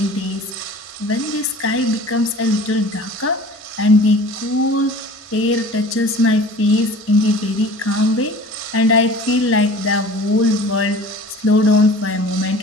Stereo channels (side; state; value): both; normal; correlation 0.43